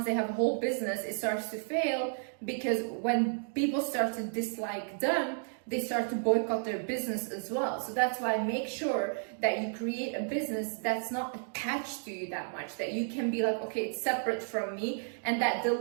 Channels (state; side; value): silent; left; digital silence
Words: they have a whole business, it starts to fail because when people start to dislike them, they start to boycott their business as well. So that's why make sure that you create a business that's not attached to you that much, that you can be like, okay, it's separate from me, and that